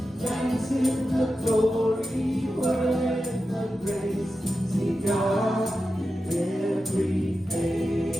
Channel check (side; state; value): both; normal; correlation 0.91